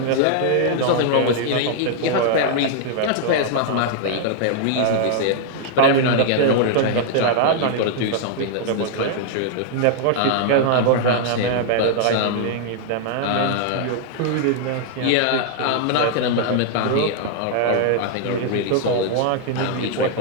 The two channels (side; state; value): both; different; correlation -0.01